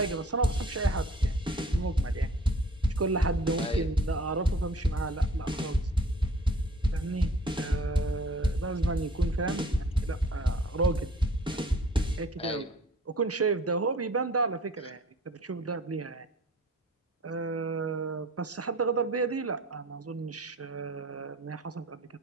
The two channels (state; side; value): normal; both; correlation 0.51